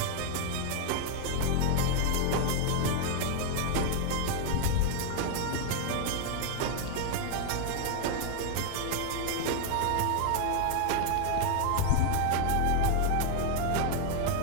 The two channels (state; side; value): different; both; correlation 0.00